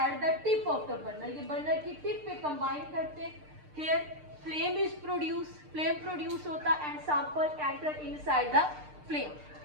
at the tip of the burner. ये बर्नर की टिप पे कंबाइन करते हैं। Here flame is produce, flame produce होता and sample enter inside the flame.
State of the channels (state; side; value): late; left; 6.6 ms